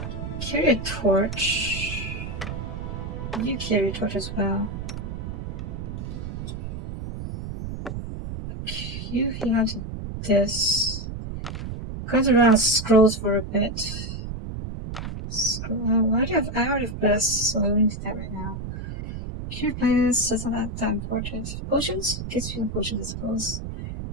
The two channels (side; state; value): right; noise; rumble, 7 dB below the sound